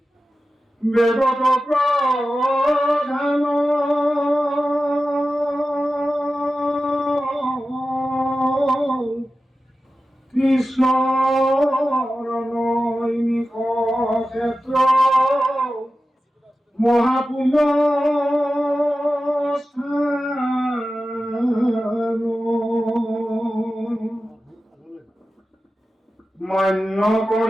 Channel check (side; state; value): both; normal; correlation 0.94